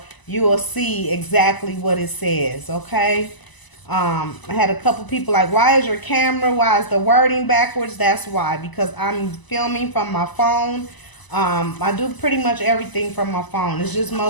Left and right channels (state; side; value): late; right; 1.0 ms